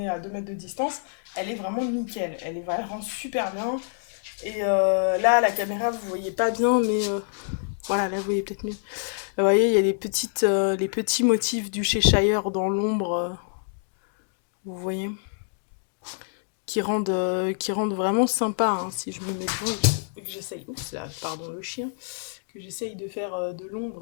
à 2 mètres de distance, elle est vraiment nickel. Elle rend super bien. Et là, à la caméra, vous voyez pas bien, mais voilà, là, vous voyez peut-être mieux. Vous voyez, il y a les petits motifs du Cheshire dans l'ombre. Vous voyez, qui rendent vraiment sympa, hein, si je me mets devant et que j'essaye, oups là, pardon le chien, que j'essaye de faire de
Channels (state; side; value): silent; right; digital silence